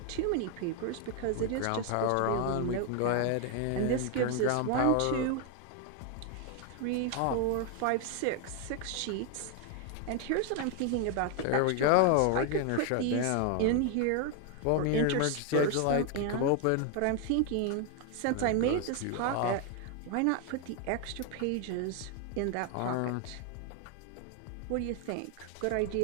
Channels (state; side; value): different; both; correlation 0.01